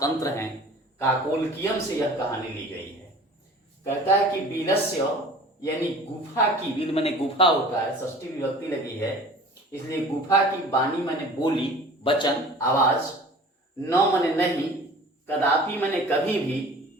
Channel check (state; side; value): normal; both; correlation 0.44